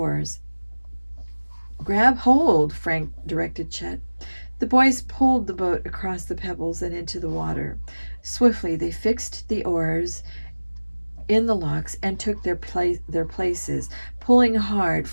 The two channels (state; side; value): inverted; both; correlation -1.00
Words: "Grab hold," Frank directed Chet. The boys pulled the boat across the pebbles and into the water. Swiftly they fixed the oars in the locks and took their places. Pulling hard,